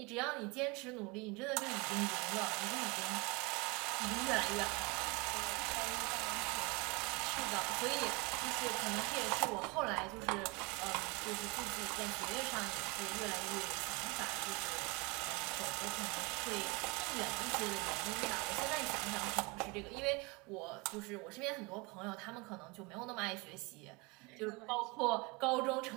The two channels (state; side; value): quieter; left; 27.7 dB